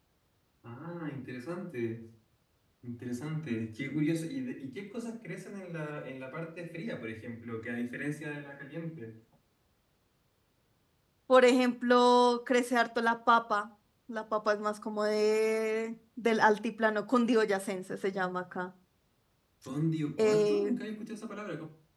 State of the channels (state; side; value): identical; both; correlation 1.00